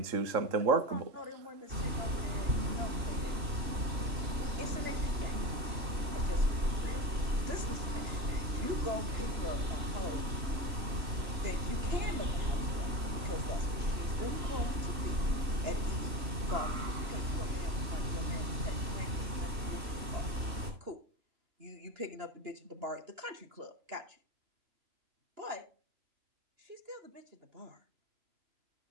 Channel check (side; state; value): left; late; 3.1 ms